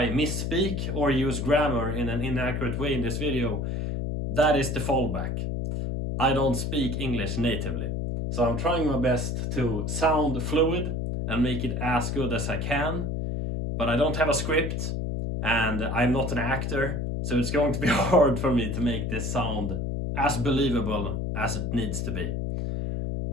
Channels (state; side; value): noise; left; hum, 1 dB below the sound